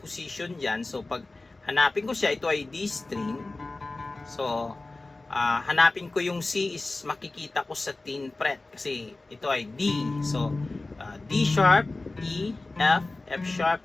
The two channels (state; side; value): quieter; right; 3.2 dB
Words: position dyan. So, pag hanapin ko siya, ito ay D string. So, hanapin ko yung C is makikita ko sa 10th fret kasi ito ay D. So, D sharp, E, F, F sharp,